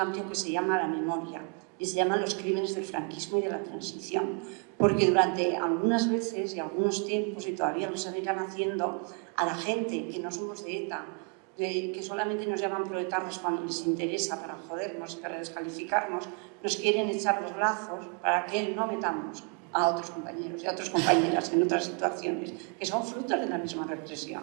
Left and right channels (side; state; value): left; quieter; 37.1 dB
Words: que se llama la memoria, y se llaman los crímenes del franquismo y de la transición, porque durante algunas veces y algunos tiempos, y todavía lo seguirán haciendo, a la gente que no somos de ETA, que solamente nos llaman proletarios cuando les interesa para jodernos y para descalificarnos, nos quieren echar los lazos para que no metamos a otros compañeros y a otras compañeras en otras situaciones que son frutos de la misma